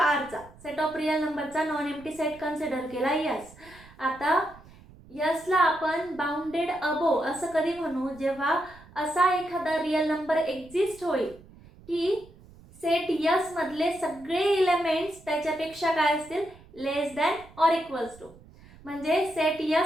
सेट ऑफ रियल नंबरचा नॉन एम्प्टी सेट कन्सिडर केला यस. आता यसला आपण बाउंडेड अबो असं कधी म्हणू, जेव्हा असा एखादा रियल नंबर एक्झिस्ट होईल की सेट यस मधले सगळे एलिमेंट्स त्याच्यापेक्षा काय असतील, less than or equals to. म्हणजे सेट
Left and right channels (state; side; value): noise; right; rumble, 23 dB below the sound